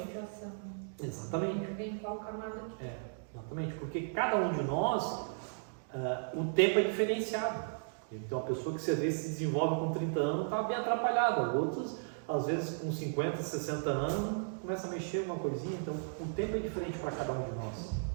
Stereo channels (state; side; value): silent; left; digital silence